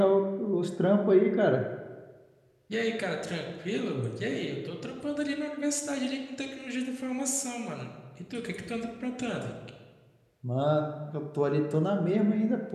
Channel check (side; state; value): both; identical; correlation 1.00